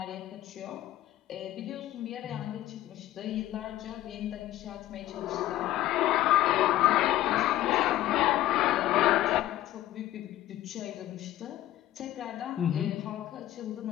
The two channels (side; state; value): right; quieter; 14.3 dB